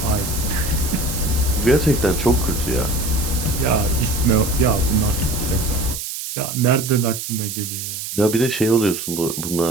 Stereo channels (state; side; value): noise; right; hiss, 6 dB below the sound